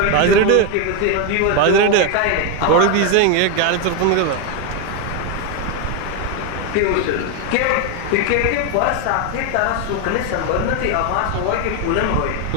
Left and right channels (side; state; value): both; different; correlation 0.02